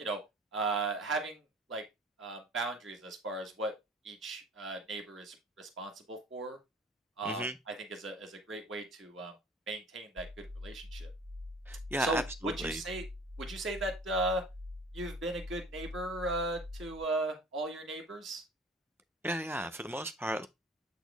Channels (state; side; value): normal; both; correlation 0.47